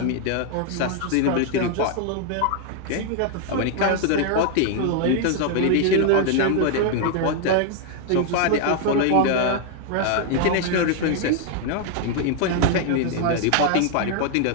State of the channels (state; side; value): different; both; correlation 0.00